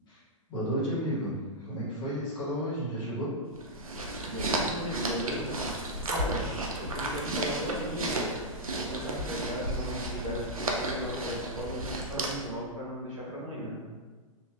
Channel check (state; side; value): normal; both; correlation -0.07